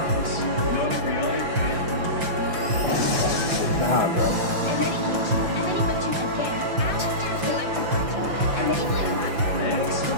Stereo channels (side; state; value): left; late; 5.9 ms